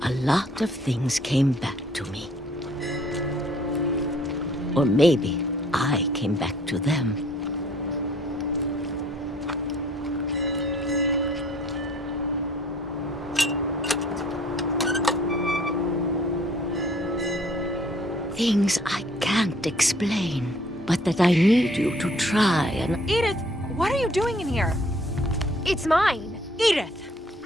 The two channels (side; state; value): both; normal; correlation 0.58